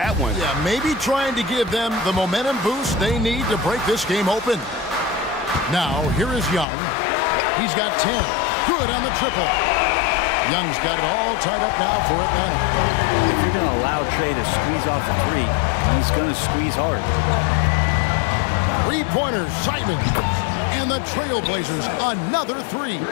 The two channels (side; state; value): right; drops out; at 6.7 s